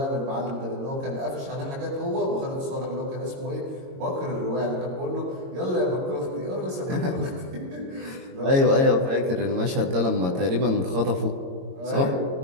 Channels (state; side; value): late; left; 22 ms